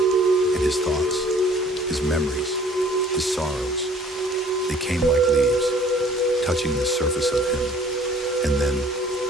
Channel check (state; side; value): normal; both; correlation 0.54